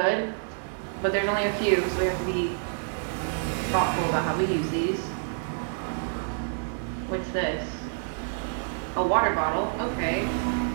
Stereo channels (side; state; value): left; silent; 59 dB below the other